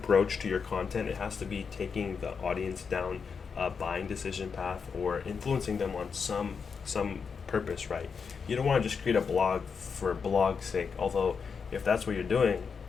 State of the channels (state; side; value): quieter; right; 5.8 dB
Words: to your content. It has to be taking the audience down a buying decision path or influencing them on some purpose, right? You don't want to just create a blog for blog's sake, although if that's what you're doing,